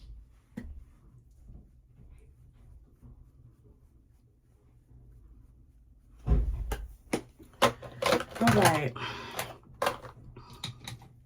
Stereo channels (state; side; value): identical; both; correlation 1.00